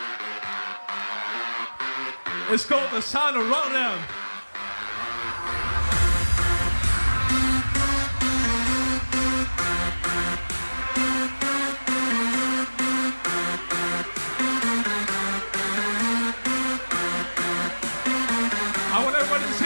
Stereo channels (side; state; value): both; inverted; correlation -1.00